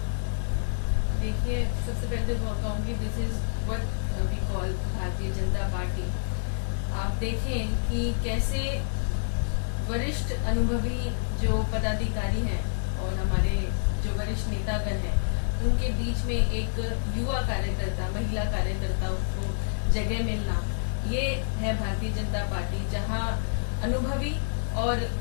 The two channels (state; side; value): silent; right; digital silence